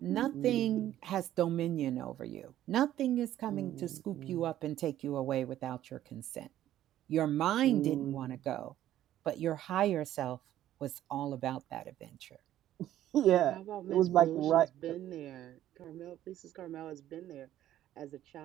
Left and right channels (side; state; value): left; quieter; 12.7 dB